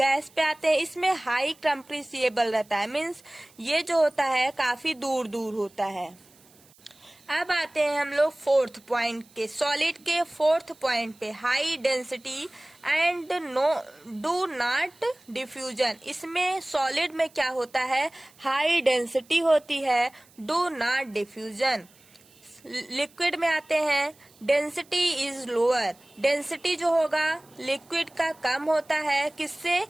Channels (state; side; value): noise; right; hiss, 28 dB below the sound